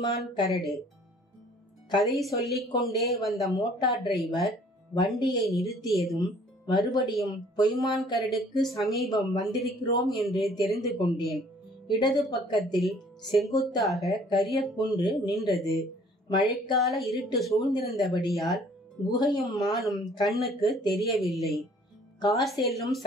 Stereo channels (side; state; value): both; normal; correlation 0.56